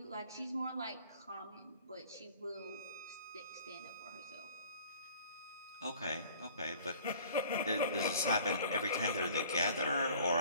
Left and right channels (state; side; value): inverted; both; correlation -0.50